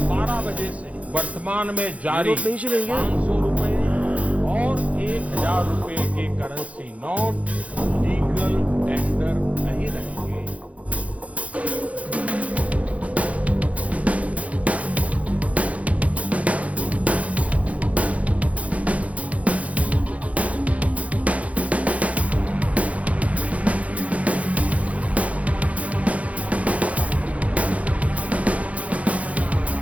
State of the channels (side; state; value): left; late; 0.066 ms